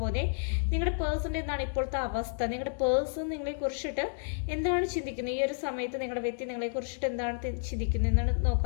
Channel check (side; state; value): right; silent; digital silence